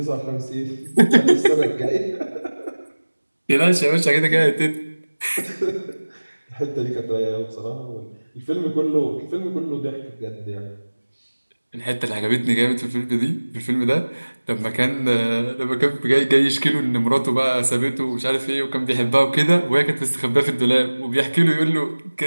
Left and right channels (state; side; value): inverted; both; correlation -1.00